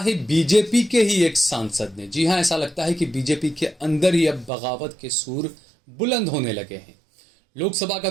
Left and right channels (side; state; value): left; drops out; at 4.5 s